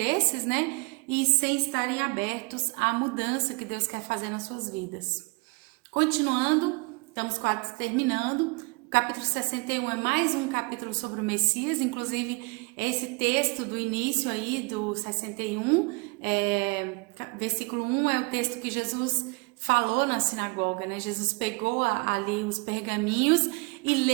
né? E sem estarem abertos à mudança que Deus quer fazer nas suas vidas. Continuando, estamos quase terminando. O capítulo 61 é mais um capítulo sobre o Messias, inclusive esse texto do início aí do 61, versículo 1 é o texto que Jesus falou na sinagoga, né? Jesus pegou ali os pergaminhos e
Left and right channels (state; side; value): quieter; left; 29.1 dB